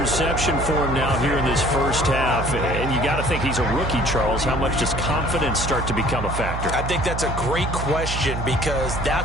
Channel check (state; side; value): noise; right; hum, 4 dB below the sound